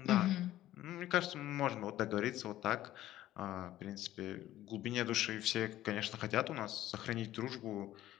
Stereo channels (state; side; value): quieter; right; 14.0 dB